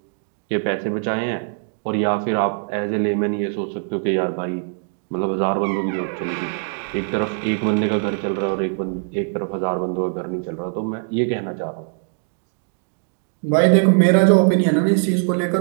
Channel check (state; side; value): silent; left; digital silence